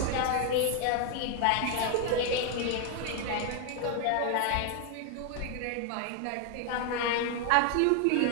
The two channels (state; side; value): different; both; correlation 0.00